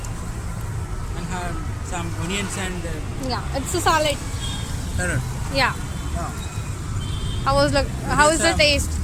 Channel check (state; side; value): identical; both; correlation 1.00